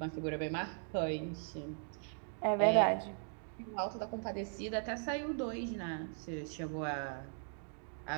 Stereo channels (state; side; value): silent; left; 52 dB below the other